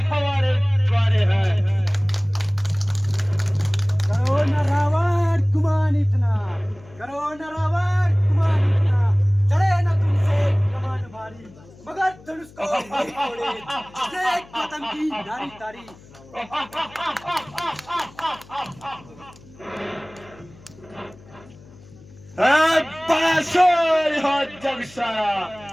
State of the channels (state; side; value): noise; left; hum, 23 dB below the sound